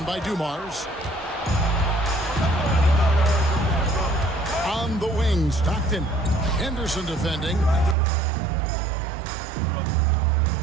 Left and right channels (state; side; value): drops out; left; at 8.0 s